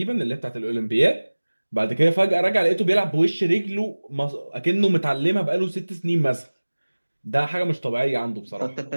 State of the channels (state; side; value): inverted; both; correlation -1.00